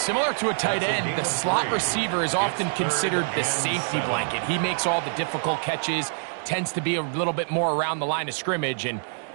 to a tight end, the slot receiver is often considered the safety blanket. He makes all the difficult catches, tends to be a little bit more around the line of scrimmage, and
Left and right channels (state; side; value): silent; left; digital silence